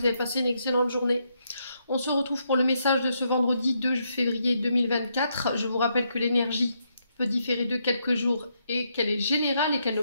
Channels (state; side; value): inverted; both; correlation -0.78